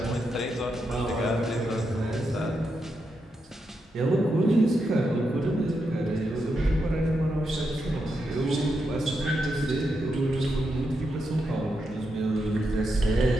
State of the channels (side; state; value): both; normal; correlation 0.84